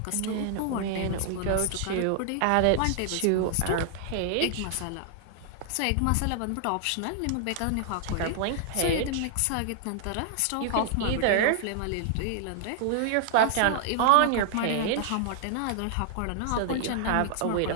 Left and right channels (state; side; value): different; both; correlation 0.00